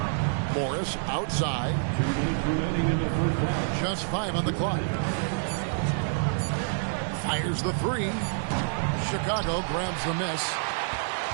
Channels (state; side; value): silent; left; digital silence